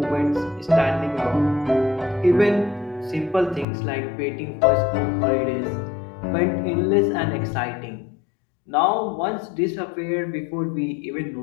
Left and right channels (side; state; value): right; drops out; at 3.7 s